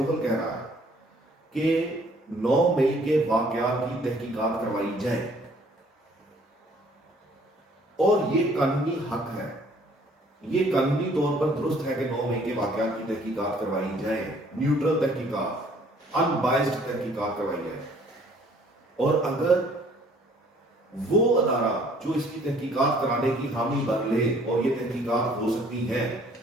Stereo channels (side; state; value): both; normal; correlation 0.58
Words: کہہ رہا ہے کہ 9 مئی کے واقعات کی تحقیقات کروائی جائے، اور یہ قانونی حق ہے، یہ قانونی طور پر درست ہے کہ 9 مئی کے واقعات کی تحقیقات کروائی جائے، نیوٹرل تحقیقات، ان بائسڈ تحقیقات کروائی جائے۔ اور اگر وہ ادارہ جو اس کی تحقیقات کرانے کی حامی بن لے اور یہ تحقیقات ہو سکتی ہیں